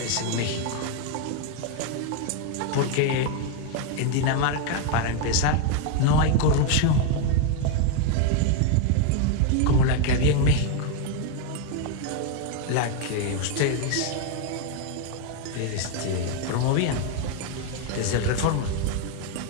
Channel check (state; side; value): different; both; correlation 0.01